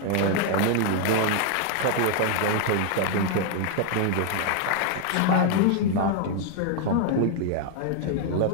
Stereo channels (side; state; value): both; different; correlation 0.00